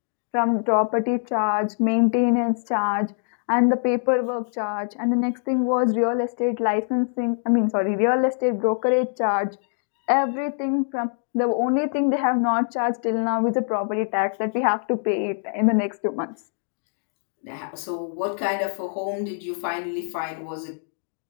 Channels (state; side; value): silent; right; digital silence